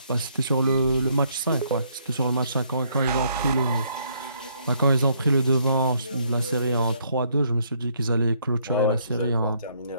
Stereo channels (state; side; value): inverted; both; correlation -0.69